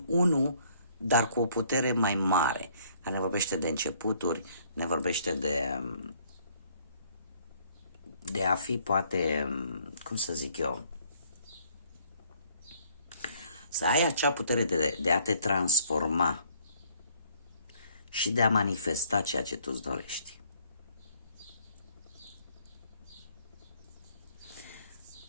1, dar cu o putere mai mare. Ne vorbește de începuturi, ne vorbește de a fi, poate, cum să zic eu, să ai acea putere de a te transforma și de a manifesta ceea ce tu îți dorești.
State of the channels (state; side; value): inverted; both; correlation -0.63